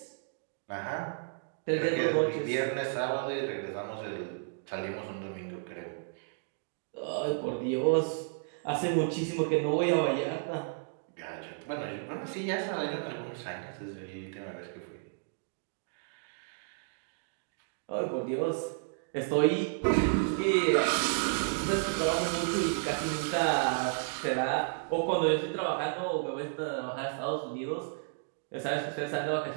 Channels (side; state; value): left; silent; digital silence